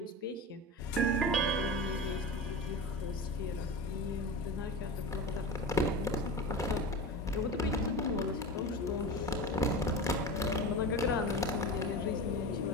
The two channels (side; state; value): both; normal; correlation 0.28